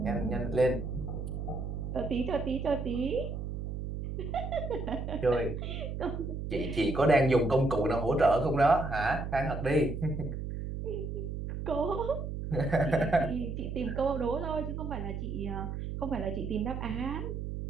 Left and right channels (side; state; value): right; noise; hum, 5 dB below the sound